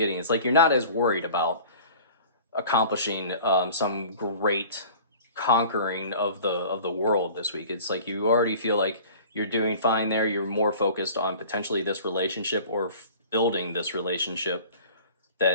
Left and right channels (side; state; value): both; inverted; correlation -0.44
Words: It's like you're not as worried about accomplishing some great conquering of the world this week. It's like you already feel like you're doing fine there. You're more focused on potentially this relationship or building this relationship